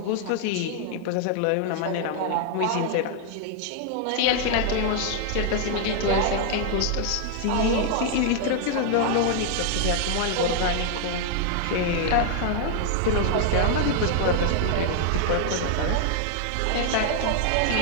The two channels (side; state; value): both; different; correlation 0.00